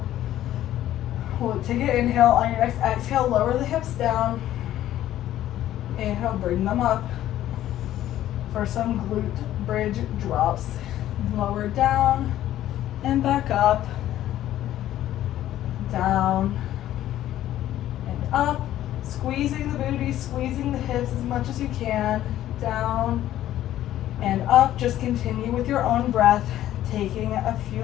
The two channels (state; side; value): quieter; right; 12.9 dB